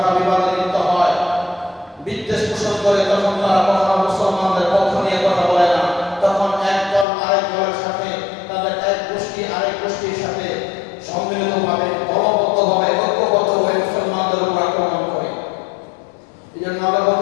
বিবাদে লিপ্ত হয়, বিদ্বেষ পোষণ করে, তখন তারা কখনো মুসলমানদের পক্ষ নিয়ে কথা বলে না। তখন এক দল আরেক দলের সাথে, তাদের এক গোষ্ঠী আরেক গোষ্ঠীর সাথে সম্মিলিতভাবে, দলবদ্ধভাবে, ঐক্যবদ্ধভাবে মুসলমানদের উপর আক্রমণ করে। এই জন্য আল্লাহ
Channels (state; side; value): drops out; right; at 7.1 s